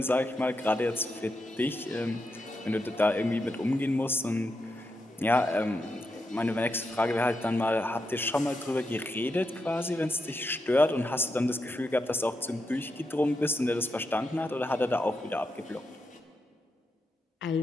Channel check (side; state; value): both; normal; correlation 0.85